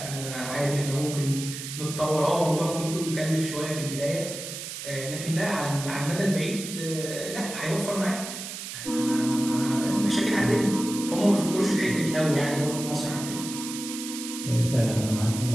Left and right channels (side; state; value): right; noise; hiss, 8 dB below the sound